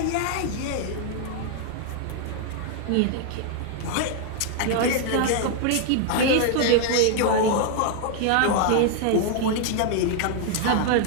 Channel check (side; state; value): both; different; correlation 0.00